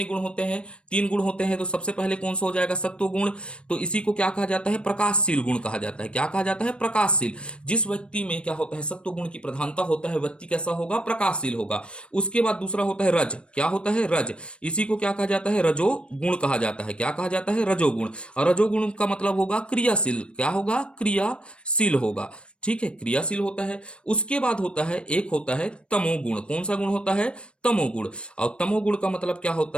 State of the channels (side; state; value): right; late; 0.058 ms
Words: गुण होते हैं, तीन गुण होते हैं। तो सबसे पहले कौन सा हो जाएगा, सत्व गुण। तो इसी को क्या कहा जाता है, प्रकाशशील गुण कहा जाता है। क्या कहा जाता है, प्रकाशशील। जिस व्यक्ति में क्या होता है, सत्व गुण की प्रधानता होता है, व्यक्ति कैसा होगा, प्रकाशशील होगा। उसके बाद दूसरा होता है रज। क्या होता है, रज। इसी को क्या कहा जाता है, रजो गुण कहा जाता है। क्या कहा जाता है, रजोगुण। और रजोगुण का मतलब होगा क्रियाशील। क्या होगा, क्रियाशील होगा। ठीक है, क्रियाशील होता है। उसके बाद होता है, एक होता है तमोगुण। कौन सा गुण होता है, तमोगुण। और तमोगुण का मतलब क्या